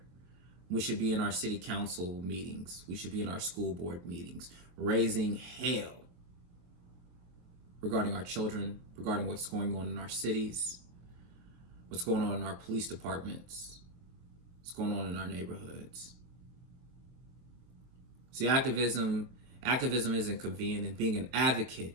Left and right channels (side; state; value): left; late; 23 ms